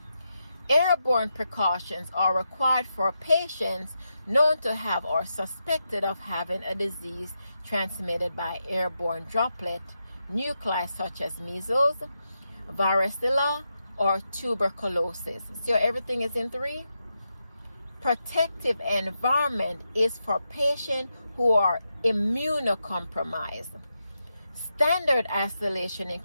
Airborne precautions are required for patients known to have or suspected of having a disease transmitted by airborne droplet nuclei such as measles, varicella, or tuberculosis. So everything is in 3. Protective environment is for patients who are immunocompromised. Standard isolation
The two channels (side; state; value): both; inverted; correlation -0.86